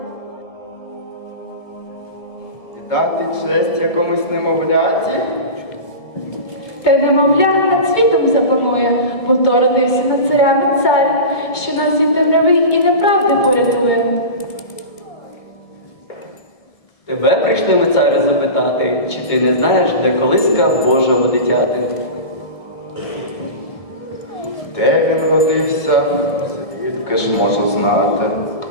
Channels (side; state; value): right; late; 1.7 ms